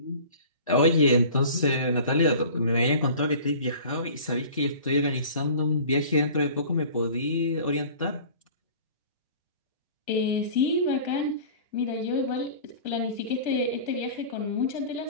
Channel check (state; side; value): inverted; both; correlation -0.43